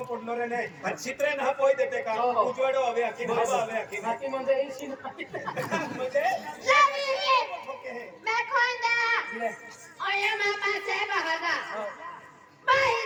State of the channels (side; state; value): both; identical; correlation 1.00